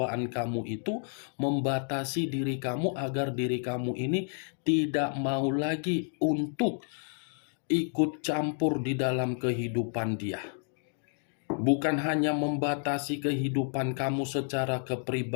kamu itu membatasi diri kamu agar diri kamu ini tidak mau lagi untuk ikut campur di dalam kehidupan dia. Bukan hanya membatasi kehidupan kamu secara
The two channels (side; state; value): right; silent; 58 dB below the other